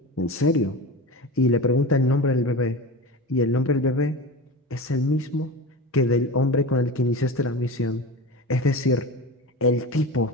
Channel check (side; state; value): both; normal; correlation 0.28